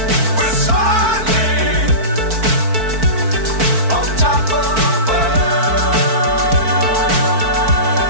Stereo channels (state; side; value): late; left; 4.5 ms